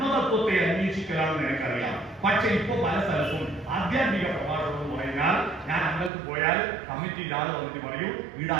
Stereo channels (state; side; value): drops out; left; at 6.1 s